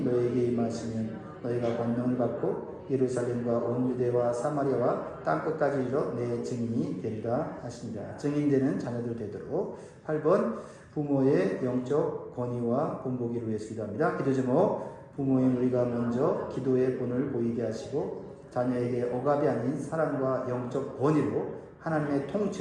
너에게 임하시면 너희가 권능을 받고 예루살렘과 온 유대와 사마리아와 땅끝까지 이르러 내 증인이 되리라 하십니다. 증인되는 자녀들 되도록. 8번 부모의 영적 권위와 본보기를 위해서 기도합니다. 기도 제목, 부모인 우리가 먼저 기도의 본을 보이게 하시고 자녀에게 억압이 아닌 사랑과 영적 권위로 하나님의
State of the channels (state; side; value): identical; both; correlation 1.00